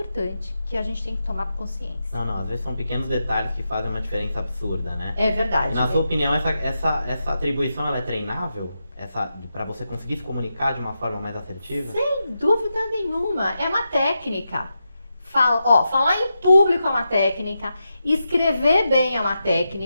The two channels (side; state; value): both; inverted; correlation -0.87